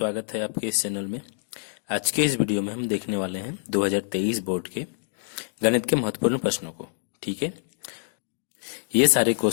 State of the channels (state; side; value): silent; right; digital silence